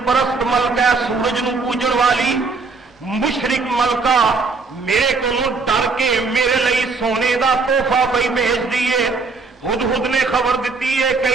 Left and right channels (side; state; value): left; quieter; 4.2 dB